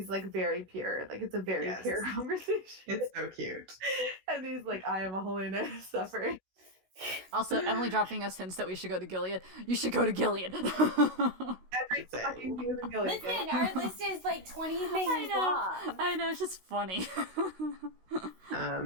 like very pure. Like it's a very pure conversation. It's so cute. And he's like, I am a Holy Knight of Suffering. Also, Emily dropping us hints that we should go to Gilead. You should go to Gilead. Every fucking thing is in Gilead. Listen, our list is like 20 things long. I know, it's just funny.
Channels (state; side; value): late; left; 16 ms